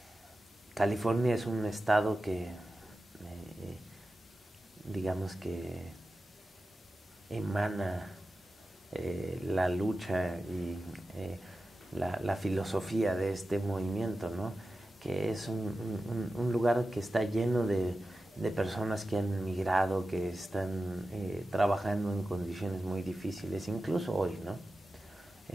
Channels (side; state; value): both; normal; correlation 0.93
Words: California es un estado que, digamos que emana la lucha y la filosofía de este movimiento, ¿no? Que es un lugar que está lleno de personas que han migrado, que están trabajando en condiciones muy difíciles, incluso hoy, ¿no?